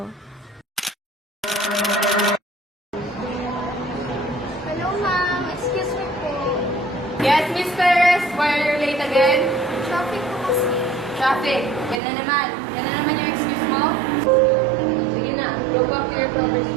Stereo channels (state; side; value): drops out; left; at 12.0 s